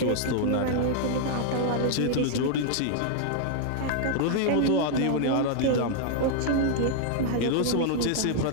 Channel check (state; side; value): different; both; correlation -0.01